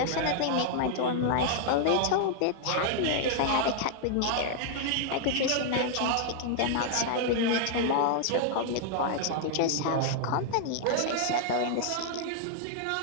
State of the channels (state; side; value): different; both; correlation 0.00